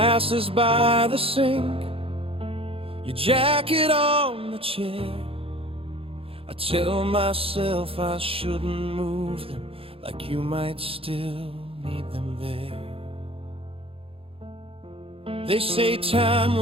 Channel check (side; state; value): left; late; 0.27 ms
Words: by the sink, your jacket on the chair. I tell myself I shouldn't move them, like you might still need them there. They say time